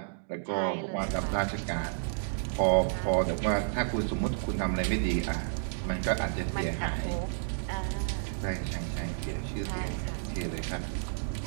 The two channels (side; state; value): left; silent; digital silence